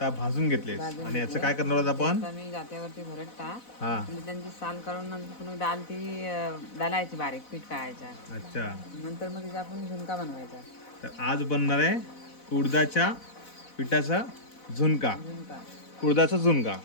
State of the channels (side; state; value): right; late; 4.0 ms